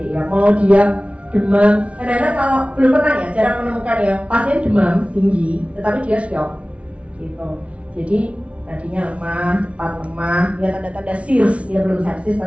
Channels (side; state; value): left; late; 0.062 ms